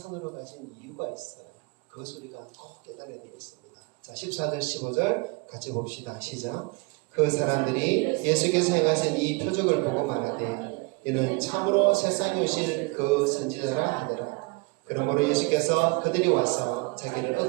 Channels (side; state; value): left; quieter; 28.6 dB